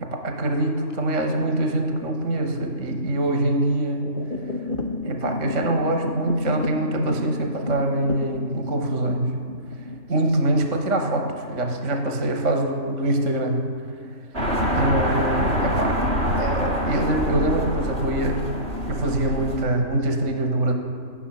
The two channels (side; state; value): left; late; 3.0 ms